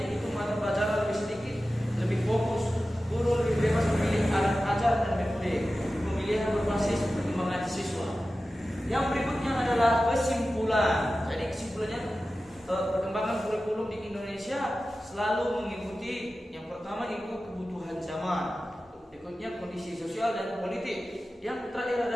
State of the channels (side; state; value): both; normal; correlation 0.94